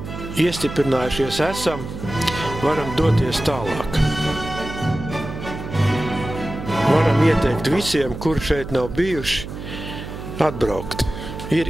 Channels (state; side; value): noise; right; hum, 9 dB below the sound